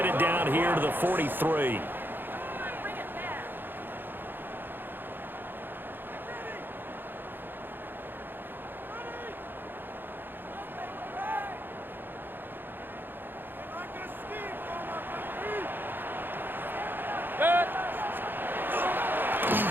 it down here to the 43.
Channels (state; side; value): late; left; 0.097 ms